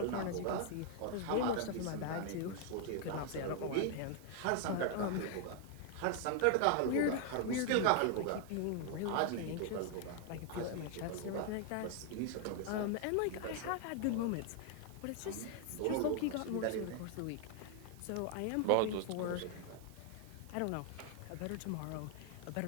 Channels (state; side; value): different; both; correlation 0.00